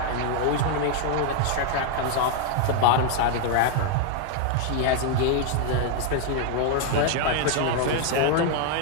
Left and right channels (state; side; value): different; both; correlation 0.00